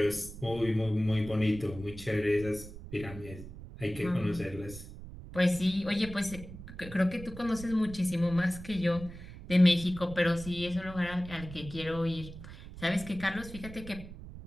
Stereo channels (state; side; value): noise; right; rumble, 13 dB below the sound